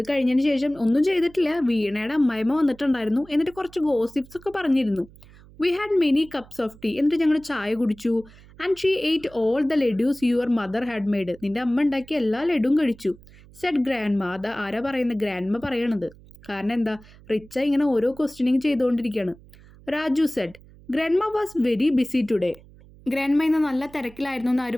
കഴിഞ്ഞതിന് ശേഷം ഒന്നും ചെയ്തിട്ടില്ല. വീണയുടെ അമ്മായിമ്മ വന്നിട്ടുണ്ടായിരുന്നു, എന്നിട്ട് കുറച്ച് ഗോസിപ്സ് ഒക്കെ പറഞ്ഞിരുന്നു. We had many cups of tea. എന്നിട്ട് ഞങ്ങൾ ചായ കുടിച്ചു. And she ate all the laddoos your mother had made. നിൻ്റെ അമ്മ ഉണ്ടാക്കിയ എല്ലാ ലഡുവും കഴിച്ചു. Said grandma. അത് ആരാ പറയുന്നത്? ഗ്രാൻഡ്മ പറയണത്. കാരണം എന്താ, റിച്ച ഇങ്ങനെ ഓരോ ക്വസ്റ്റ്യനിങ് ചെയ്തുകൊണ്ടിരിക്കുകയാണ്. Raju said grandma was very busy today. Grandma ഇന്ന് നല്ല തിരക്കിലായിരുന്നു എന്ന് ആര്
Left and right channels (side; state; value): right; noise; hum, 23 dB below the sound